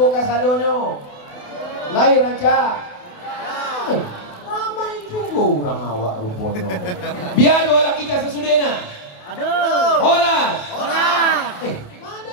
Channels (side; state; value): right; late; 28 ms